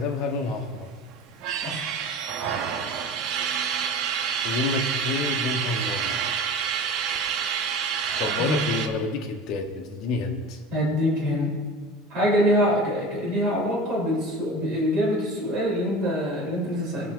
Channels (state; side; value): normal; both; correlation 0.36